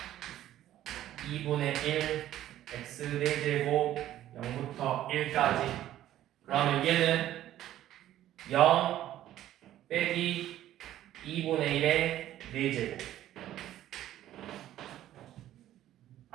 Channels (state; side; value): quieter; left; 12.9 dB